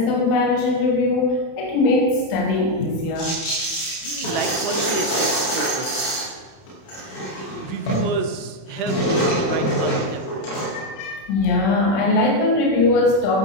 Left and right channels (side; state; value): right; late; 31 ms